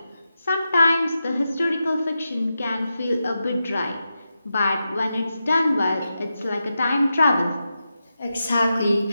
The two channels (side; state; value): both; inverted; correlation -0.89